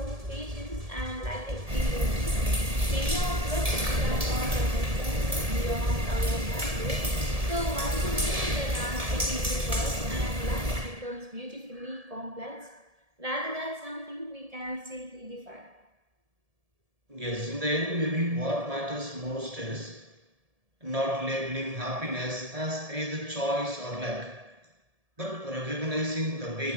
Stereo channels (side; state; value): left; late; 1.7 ms